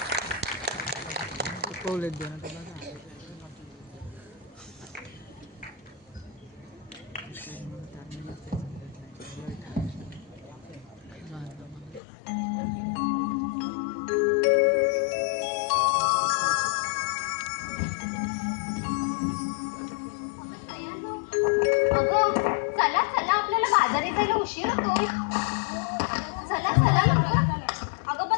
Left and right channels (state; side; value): drops out; right; at 12.0 s